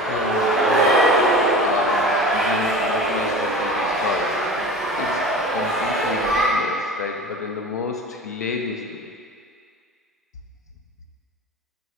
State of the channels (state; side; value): normal; both; correlation 0.35